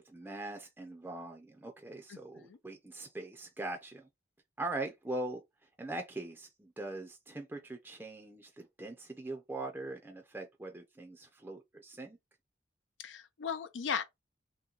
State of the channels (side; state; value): both; normal; correlation 0.39